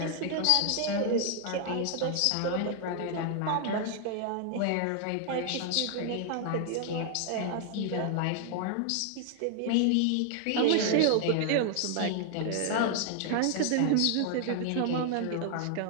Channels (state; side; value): different; both; correlation 0.00